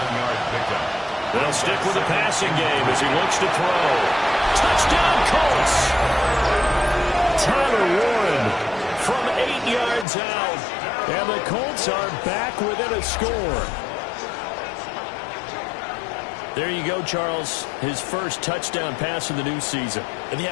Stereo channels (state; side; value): drops out; right; at 10.1 s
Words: pickup. They'll stick with the passing game as he looks to throw. Touchdown, Colts! Tyler Warren from 8 yards out. And the Colts are back within a score. There you go, Charles. His first touchdown pass of the new season. And he